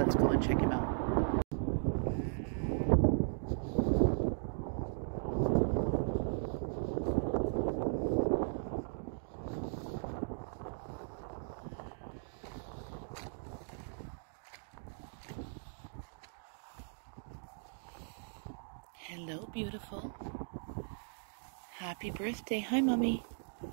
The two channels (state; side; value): silent; left; digital silence